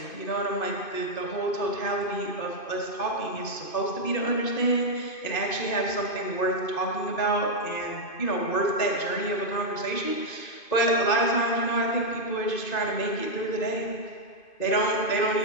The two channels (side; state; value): right; late; 2.5 ms